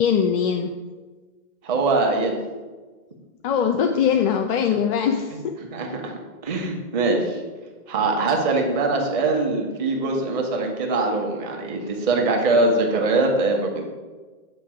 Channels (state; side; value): late; right; 2.1 ms